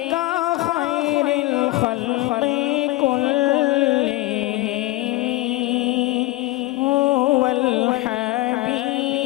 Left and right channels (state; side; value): quieter; right; 18.8 dB